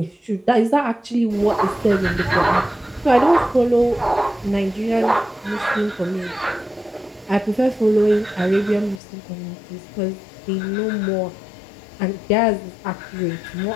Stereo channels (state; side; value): drops out; right; at 9.0 s